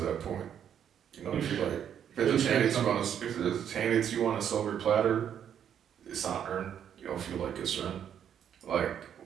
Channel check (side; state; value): left; quieter; 9.0 dB